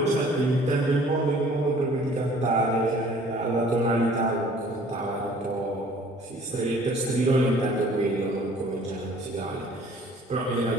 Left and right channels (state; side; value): normal; both; correlation 0.53